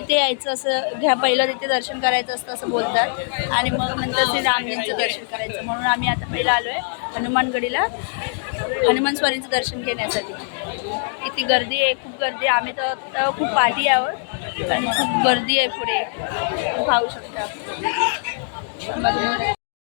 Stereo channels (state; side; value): silent; right; digital silence